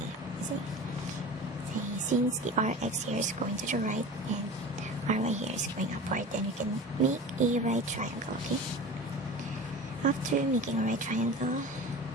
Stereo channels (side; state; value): both; normal; correlation 0.34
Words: See, since the rx here is going to the right and ry here is going upward, then we can make a right triangle. Okay, after making a right triangle,